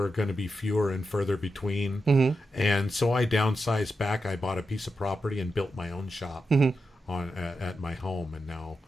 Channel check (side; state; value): both; normal; correlation 0.88